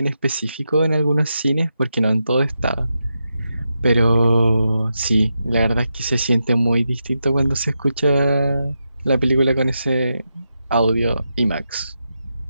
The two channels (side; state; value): both; inverted; correlation -0.87